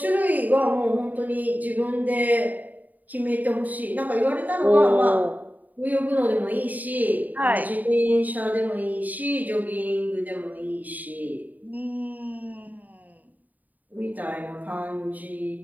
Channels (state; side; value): late; left; 0.081 ms